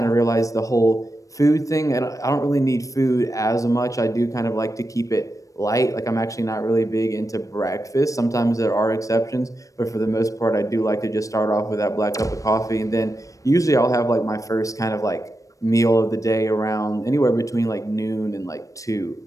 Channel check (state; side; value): late; right; 0.16 ms